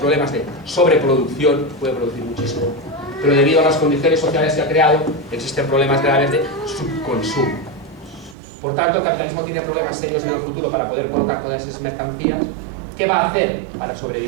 de sobreproducción, puede producir muchísimo, pero debido a las condiciones sociales que ha creado, existen problemas graves de subconsumo. Por tanto, el capitalismo tiene problemas serios en el futuro para poder colocar todas esas mercancías. ¿Qué va a hacer para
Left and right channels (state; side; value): drops out; left; at 8.3 s